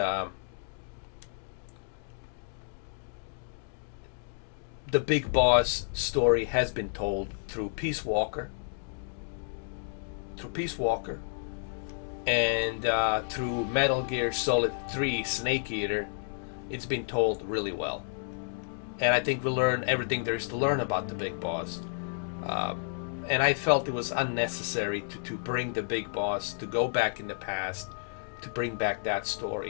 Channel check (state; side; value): silent; right; digital silence